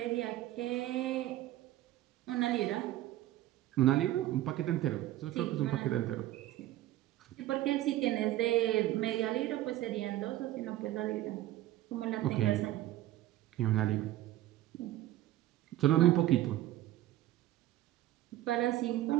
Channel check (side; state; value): left; quieter; 14.6 dB